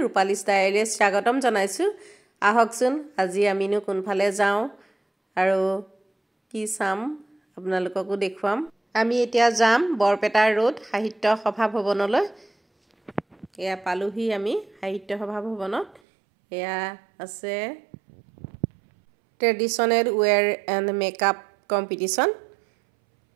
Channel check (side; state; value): left; drops out; at 16.0 s